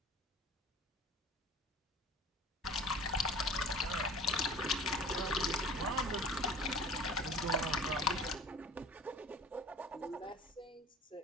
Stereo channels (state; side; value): normal; both; correlation 0.42